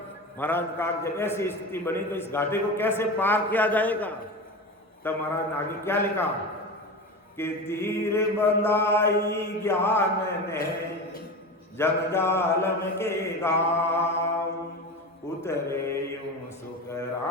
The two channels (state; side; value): normal; both; correlation 0.26